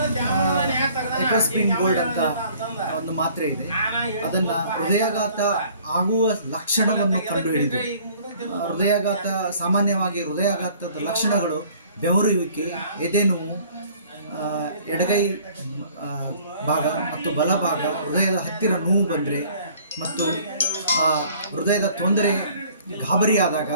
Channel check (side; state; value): both; inverted; correlation -0.55